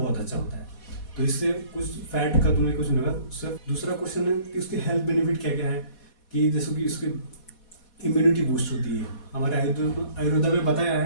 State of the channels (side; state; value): right; late; 4.2 ms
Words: अच्छा होता है। तो इससे कुछ फैट का तुम्हें कुछ नहीं होगा। सिर्फ दूसरा क्वेश्चन है कि उसके हेल्थ बेनिफिट क्या क्या है, कि जैसे कि उसकी इम्यूनिटी बूस्ट होती है। हमारे आयुर्वेदा में बताया